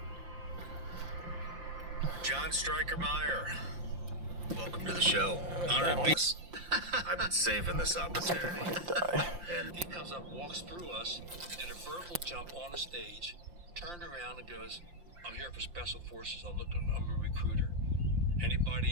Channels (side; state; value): left; late; 5.7 ms